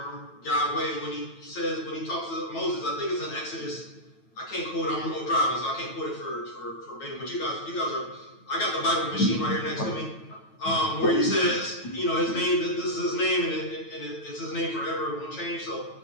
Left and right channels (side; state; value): right; late; 9.1 ms